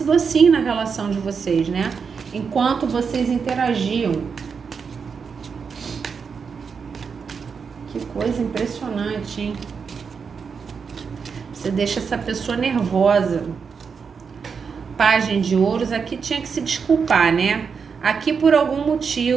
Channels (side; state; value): left; quieter; 5.9 dB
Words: assim na relação de vocês, né? Enquanto vocês interagiam. Que coisa impressionante, hein? Você deixa essa pessoa nervosa. Página de ouros, aqui tinha que se desculpar, né? Aqui por algum